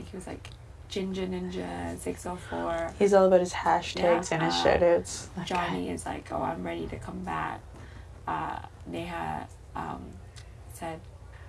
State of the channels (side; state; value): both; identical; correlation 1.00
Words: he was like Ginger Ninja 604. He's all about his hashtags and his shoutouts. Johnny is like, oh, I'm ready to come back. Neha said,